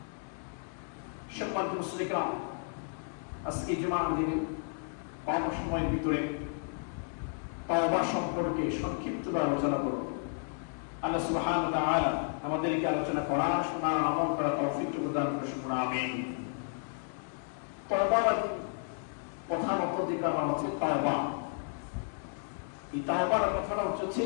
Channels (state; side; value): silent; right; 56 dB below the other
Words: সম্মানিত মুসলিম, আজকে জুমার দিনে কম সময়ের ভিতরে তওবা সম্পর্কে সংক্ষিপ্ত আলোচনা করব। আল্লাহ সুবহানাহু ওয়া তাআলা আমাদেরকে আলোচনা করা, শোনা, আমল করা তৌফিক দান করুন, আমিন। তওবার প্রধান অধিকার হচ্ছে তওবা। এই তওবার কথাটা হচ্ছে